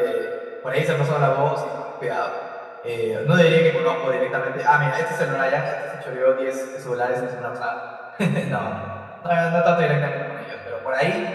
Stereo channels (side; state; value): both; identical; correlation 1.00